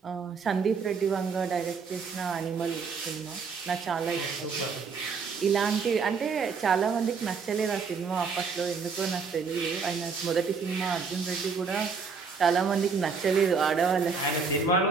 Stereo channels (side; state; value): left; quieter; 5.3 dB